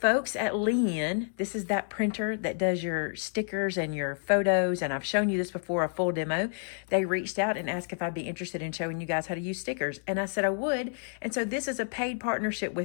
at Leen, this is that printer that does your stickers and your photos, and I've shown you this before, a full demo. They reached out and asked if I'd be interested in showing you guys how to use stickers, and I said I would. And so this is a paid partnership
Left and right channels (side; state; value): right; silent; digital silence